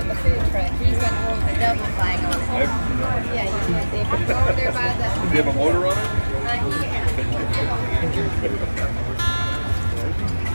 the food truck. He's got one you have a motor on it?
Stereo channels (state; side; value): inverted; both; correlation -1.00